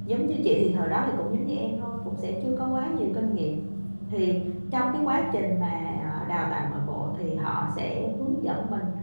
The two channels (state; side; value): inverted; both; correlation -1.00